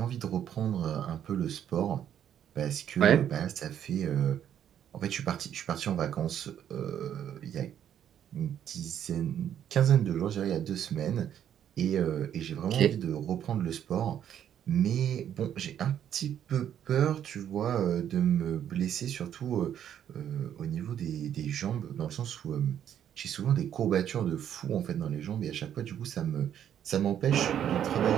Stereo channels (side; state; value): left; quieter; 9.8 dB